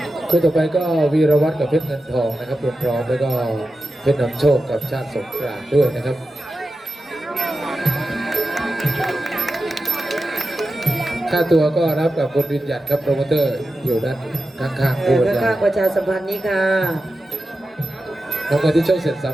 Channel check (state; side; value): normal; both; correlation 0.92